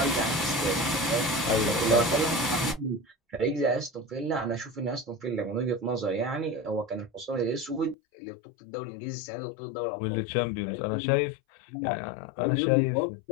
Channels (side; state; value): right; drops out; at 8.0 s